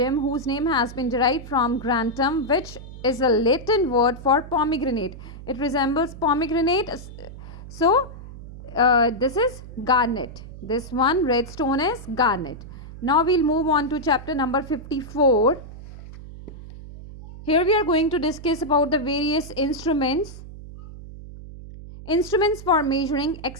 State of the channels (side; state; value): right; noise; hum, 14 dB below the sound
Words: whose name has been derived from grantum, which is a Latin word for pomegranate. It resembles pomegranate. So this is garnet. This one red stone is garnet. Now we'll move on to chapter number 54. Here we are going to discuss about the various instruments. Instruments for measuring